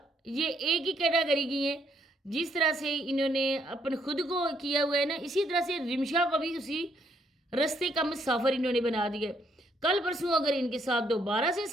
یہ ایک ہی کیٹاگری کی ہیں۔ جس طرح سے انہوں نے اپنے خود کو کیا ہوا ہے نا، اسی طرح سے رمشا کو بھی اسی رستے کا مسافر انہوں نے بنا دیا۔ کل پرسوں اگر ان کے ساتھ دوبارہ سے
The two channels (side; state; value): both; normal; correlation 0.71